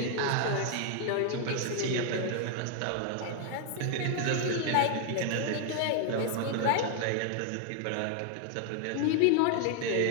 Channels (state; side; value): different; both; correlation 0.00